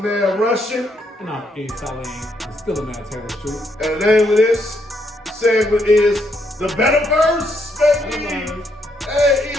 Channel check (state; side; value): normal; both; correlation 0.75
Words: Russian. And I'm Salim, still a man Taylor Street. And the name of this segment is the Betaverse, baby. Hey,